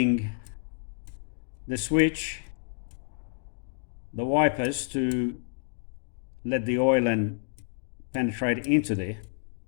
the switch, the wipers, to let the oil and penetrate into there,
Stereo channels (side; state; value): right; silent; digital silence